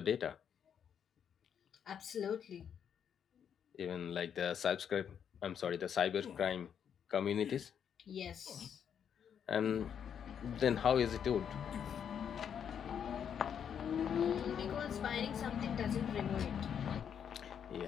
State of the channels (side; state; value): right; quieter; 8.2 dB